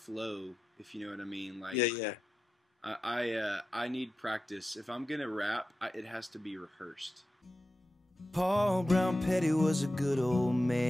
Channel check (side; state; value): both; normal; correlation 0.91